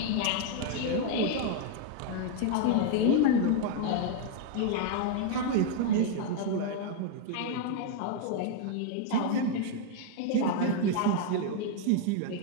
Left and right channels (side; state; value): both; different; correlation 0.00